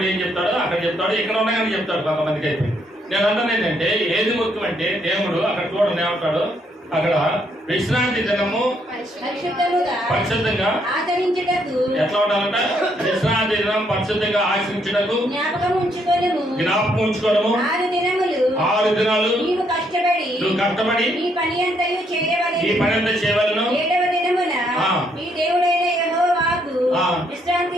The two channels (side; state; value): both; normal; correlation 0.72